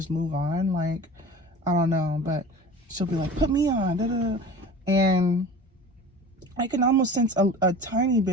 move on. Like, I don't know, but she'll be like, put me on, da, da, da. And I can almost sense a tiny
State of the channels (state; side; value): normal; both; correlation 0.38